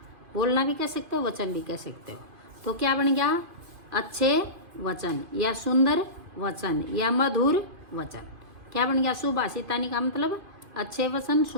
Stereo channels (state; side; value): late; left; 2.5 ms